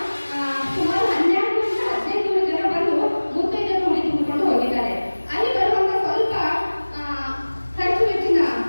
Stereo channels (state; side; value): inverted; both; correlation -1.00